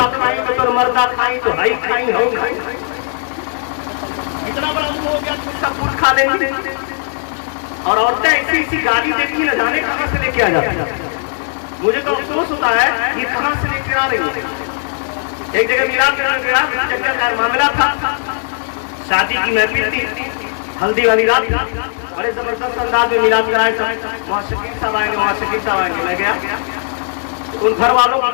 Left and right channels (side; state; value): right; silent; 56 dB below the other